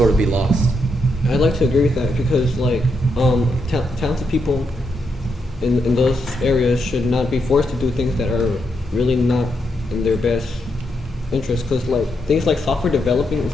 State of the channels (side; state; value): both; normal; correlation 0.81